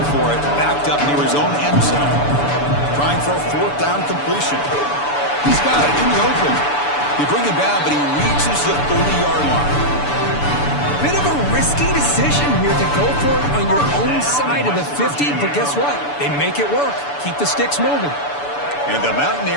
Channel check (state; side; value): late; right; 6.9 ms